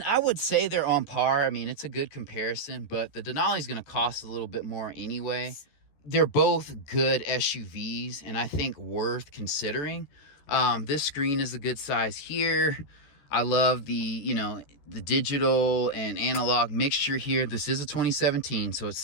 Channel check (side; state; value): right; late; 14 ms